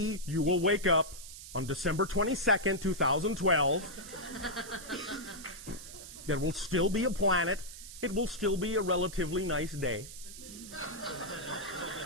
you will wake up on December 22nd, 2012. There will still be a planet. It will still be a relatively nice day.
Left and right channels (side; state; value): right; noise; hiss, 13 dB below the sound